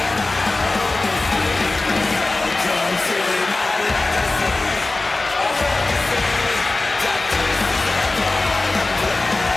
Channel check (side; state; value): right; quieter; 3.2 dB